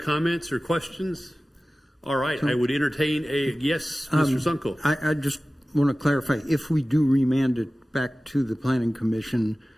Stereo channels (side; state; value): both; normal; correlation 0.96